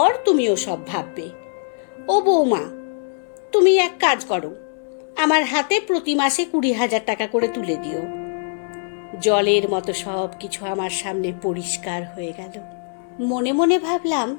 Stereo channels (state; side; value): silent; right; digital silence